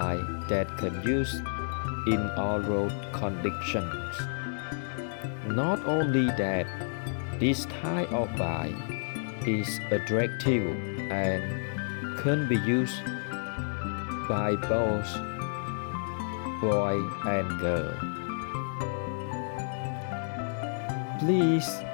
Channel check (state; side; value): silent; right; digital silence